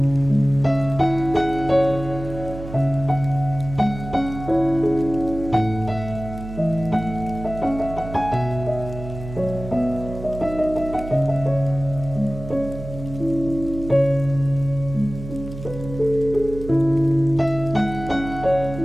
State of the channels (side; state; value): right; noise; hum, 11 dB below the sound